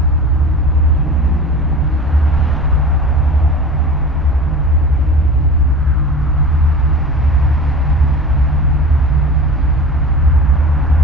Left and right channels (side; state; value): both; normal; correlation 0.36